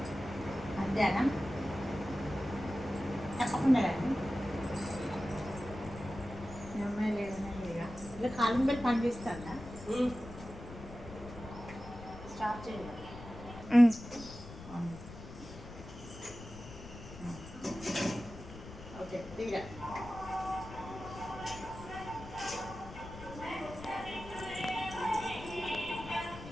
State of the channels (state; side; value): noise; left; rumble, 13 dB below the sound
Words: మధ్యాహ్నం తప్పకుండా రండి. అమ్మాయి లేదన్నా లేగా ఇలా కాలం పెట్టి పని చేస్తాడా స్టాప్ చేయాలి. ఓకే తీరా